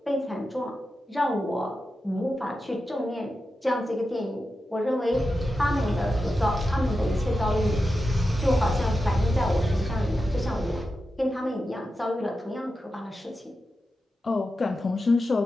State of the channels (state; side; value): normal; both; correlation 0.90